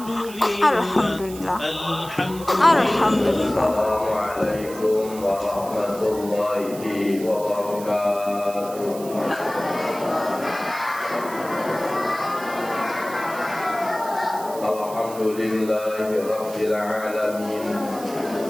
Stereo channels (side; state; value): right; noise; hiss, 16 dB below the sound